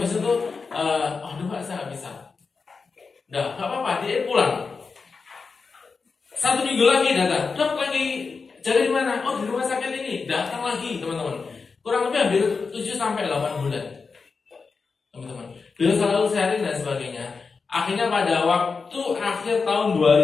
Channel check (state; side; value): quieter; right; 4.8 dB